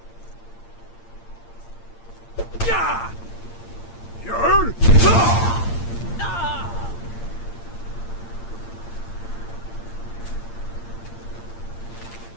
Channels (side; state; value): right; late; 8.7 ms